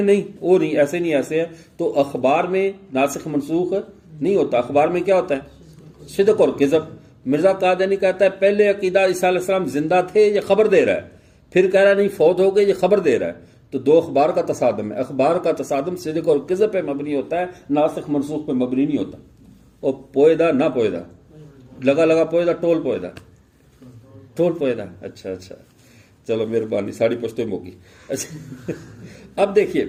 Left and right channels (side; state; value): both; identical; correlation 1.00